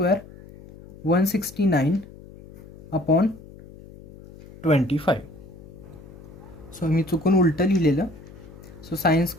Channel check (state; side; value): noise; left; hum, 19 dB below the sound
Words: 169 upon 25. So मी चुकून उलटं लिहिलेलं. So sin